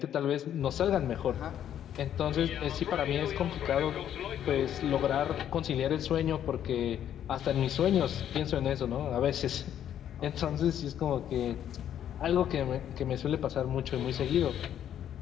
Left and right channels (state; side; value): quieter; right; 10.2 dB